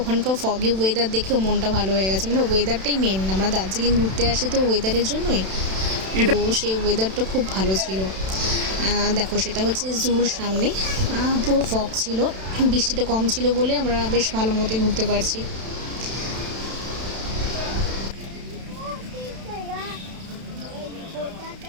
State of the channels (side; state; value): left; late; 31 ms